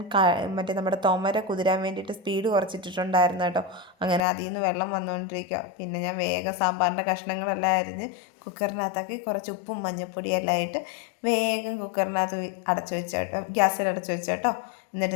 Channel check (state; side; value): drops out; right; at 4.2 s